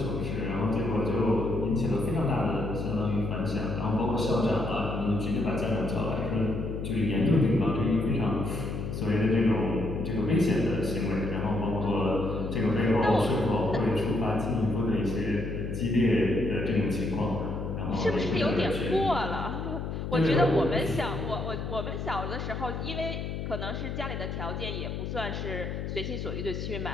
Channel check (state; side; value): noise; left; hum, 5 dB below the sound